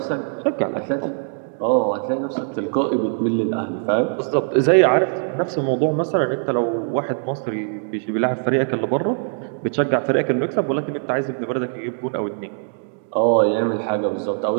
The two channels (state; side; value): silent; left; digital silence